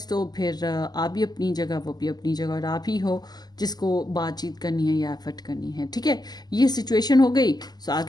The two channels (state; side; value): late; right; 0.20 ms